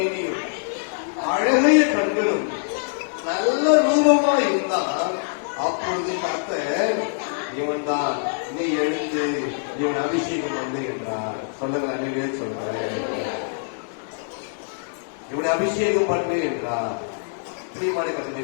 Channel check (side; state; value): right; silent; 63 dB below the other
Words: அழகிய கண்களும் நல்ல ரூபமா இருந்தான். அப்பொழுது கர்த்தர் இவன் தான், நீ எழுந்து இவன் அபிஷேகம் வந்து என்றார். சொல்லுங்க, அன்னையே சொல்றேன், இவனை அபிஷேகம் பண்ணு என்றார். பிரியமான கருத்தை